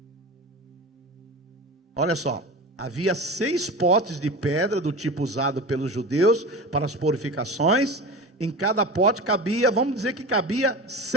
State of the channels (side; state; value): both; normal; correlation 0.30